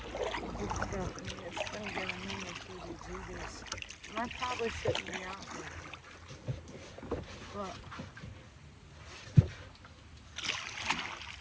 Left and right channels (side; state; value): both; identical; correlation 1.00